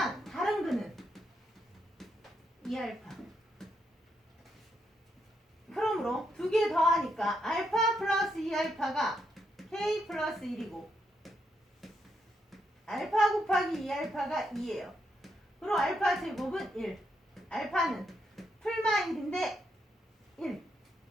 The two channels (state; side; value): normal; both; correlation 0.79